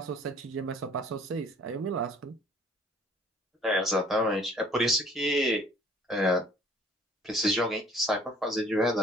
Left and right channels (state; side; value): normal; both; correlation 0.55